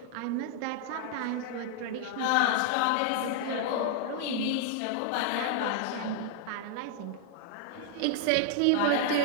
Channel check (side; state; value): both; different; correlation 0.00